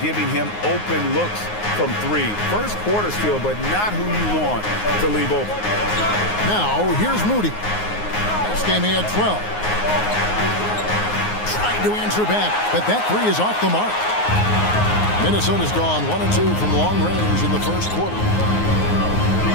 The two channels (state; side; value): late; right; 9.6 ms